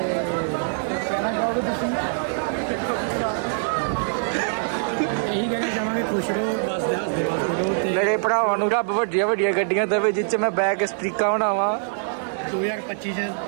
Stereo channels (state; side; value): silent; left; 63 dB below the other